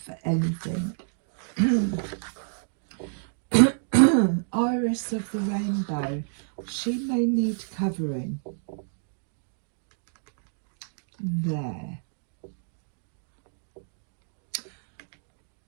for anything. Iris of the rainbow, she may need covering. There.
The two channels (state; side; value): silent; left; digital silence